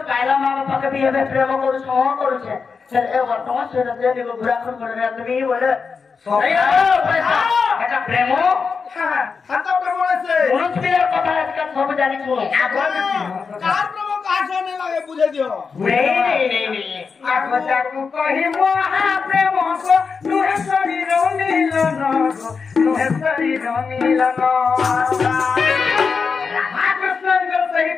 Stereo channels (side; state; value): right; quieter; 5.3 dB